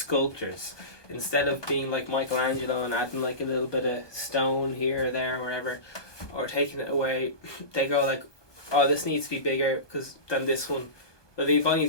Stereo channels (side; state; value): right; late; 1.2 ms